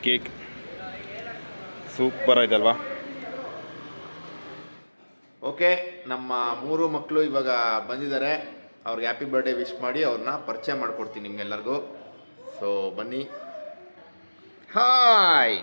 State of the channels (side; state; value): both; inverted; correlation -1.00